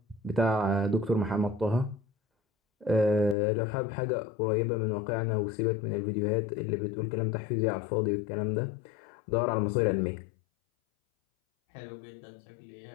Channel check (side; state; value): right; drops out; at 3.4 s